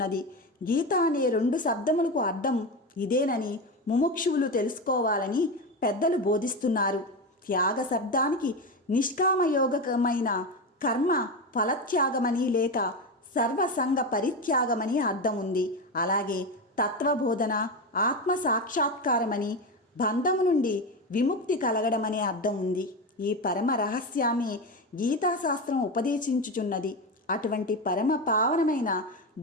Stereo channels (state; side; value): normal; both; correlation 0.18